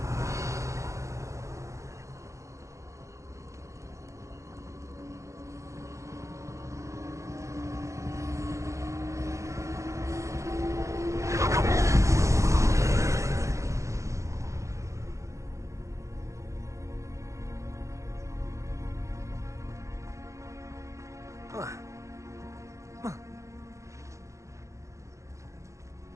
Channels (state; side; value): late; left; 0.15 ms